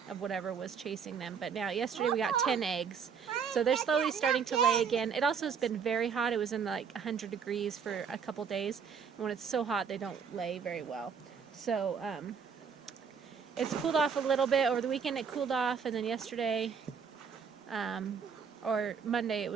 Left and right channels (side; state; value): left; quieter; 6.5 dB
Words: of whatever was chasing them. But now, yesterday we got 10 eggs. So they're slowly starting to lay again. It also has been very hot. It was in like 100 degrees for a couple days. And when it's so hot, they don't lay very well. So it's cooled off a little bit. Over the weekend it cooled off, and then yesterday or Monday it